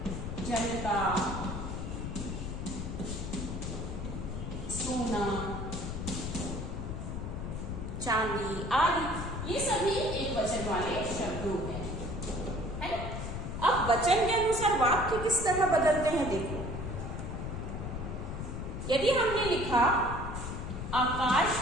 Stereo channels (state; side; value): noise; left; rumble, 5 dB below the sound